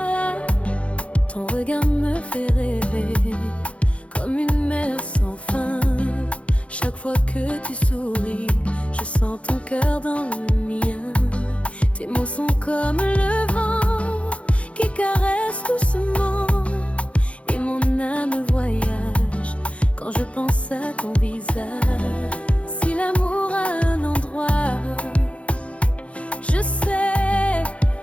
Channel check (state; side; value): late; right; 0.062 ms